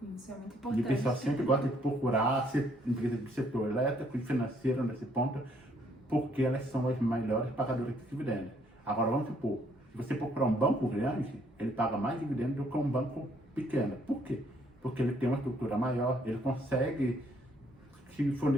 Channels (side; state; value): both; normal; correlation 0.67